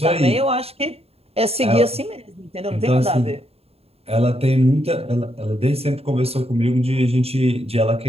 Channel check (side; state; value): left; late; 0.29 ms